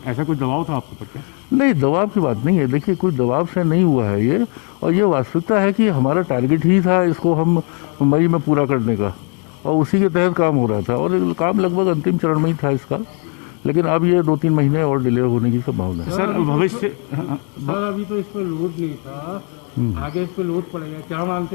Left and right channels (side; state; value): right; quieter; 37.7 dB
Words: ऐसा कुछ दबाव था आपके ऊपर? क्या? नहीं, दबाव की बात नहीं है। देखिए, कोई दबाव से नहीं हुआ है ये, और ये वास्तविकता है कि हमारा टारगेट ही था इसको हम मई में पूरा करने का, और उसी के तहत काम हो रहा था, और काम लगभग अंतिम चरण में ही था इसका। लेकिन अब ये 2-3 महीने और डिले होने की संभावना है। सर, भविष्य सर, अभी तो इस पर लोड नहीं था, आगे इस पर लोड पड़ेगा, क्या